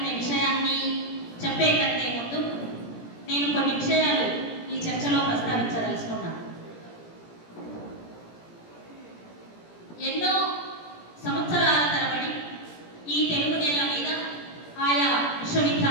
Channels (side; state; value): right; late; 17 ms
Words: విషయాన్ని చెప్పే కంటే ముందు నేను కొన్ని విషయాలు ఈ చర్చలో ప్రస్తావించదలుచుకున్నాను. ఎన్నో సంవత్సరాల తరబడి ఈ తెలుగు నేల మీద ఆయా